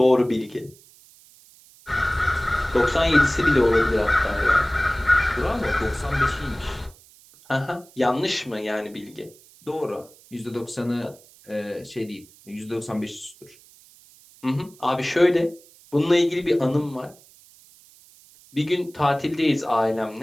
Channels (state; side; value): noise; right; hiss, 26 dB below the sound